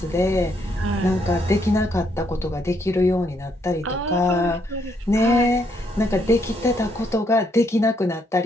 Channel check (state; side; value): normal; both; correlation 0.73